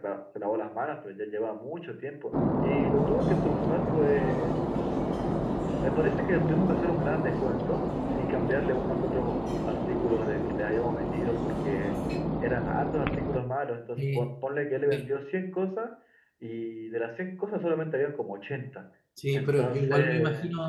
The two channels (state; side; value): identical; both; correlation 1.00